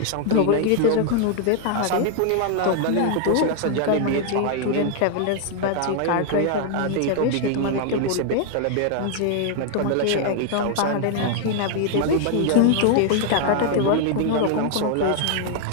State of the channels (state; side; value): different; both; correlation 0.00